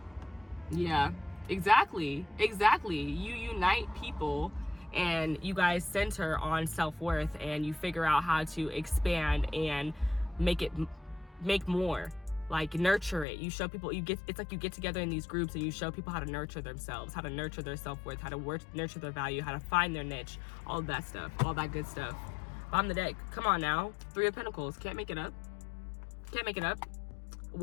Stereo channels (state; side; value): drops out; right; at 13.2 s